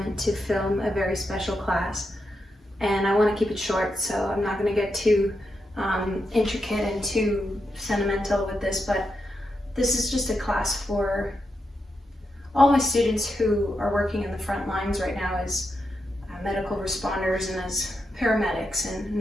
to film a very special class, and I want to keep it short, so I'm not going to get too intricate and too sentimental with this, but this is just a class for all my students who are working in the front lines right now as medical responders and as paramedics and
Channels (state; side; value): normal; both; correlation 0.85